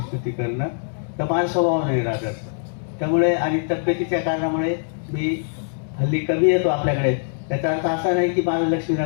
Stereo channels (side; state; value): right; silent; 61 dB below the other